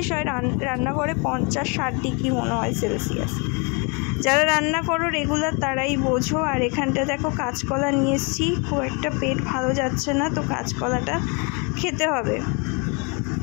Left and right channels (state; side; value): quieter; right; 32.8 dB